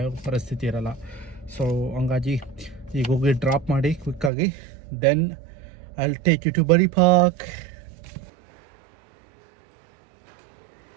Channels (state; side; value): drops out; left; at 4.3 s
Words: ಪರಿಸ್ಥಿತಿ ಇರಲ್ಲ. ಸೊ ಹಂಗಾಗಿ ಈಗ ಹೋಗಿ ಡ್ರಾಪ್ ಮಾಡಿ ಕ್ವಿಕ್ಕಾಗಿ, then I'll take you to Buddy Park.